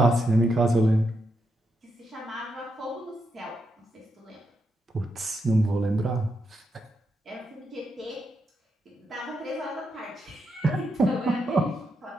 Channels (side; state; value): both; normal; correlation 0.82